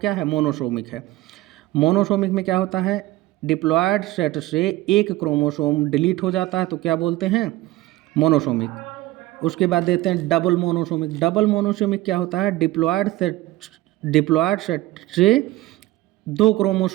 है? मोनोसोमिक है। मोनोसोमिक में क्या होता है? डिप्लॉयड सेट से एक क्रोमोसोम डिलीट हो जाता है तो क्या बोलते हैं? मोनोसोमिक। उसके बाद देते हैं डबल मोनोसोमिक। डबल मोनोसोमिक क्या होता है? डिप्लॉयड सेट से 2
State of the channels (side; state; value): left; quieter; 17.4 dB